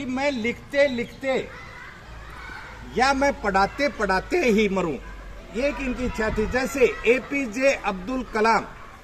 मैं लिखते लिखते या मैं पढ़ाते पढ़ाते ही मरूं। ये एक इनकी इच्छा थी। जैसे APJ अब्दुल कलाम।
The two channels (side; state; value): both; identical; correlation 1.00